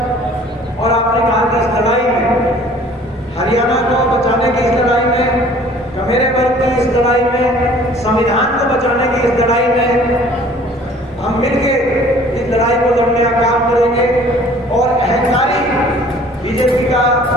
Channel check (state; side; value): normal; both; correlation 0.52